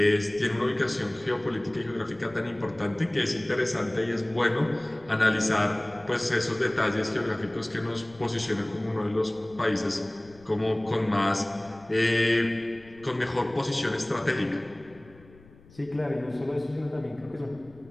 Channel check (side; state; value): left; noise; rumble, 24 dB below the sound